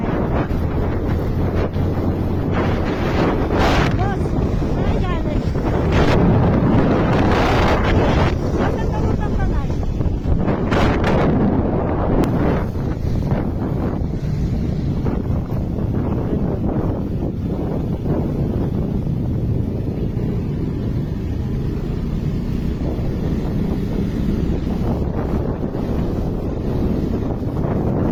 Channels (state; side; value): identical; both; correlation 1.00